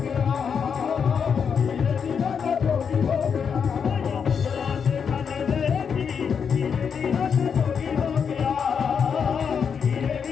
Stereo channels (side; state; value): right; quieter; 6.7 dB